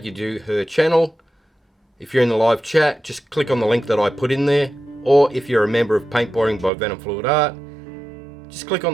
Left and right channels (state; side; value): drops out; left; at 6.7 s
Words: you to her channel. If you're in the live chat, just click on the link that I put in there. Or if you're a member of Paintballing by venomfluidart, just click on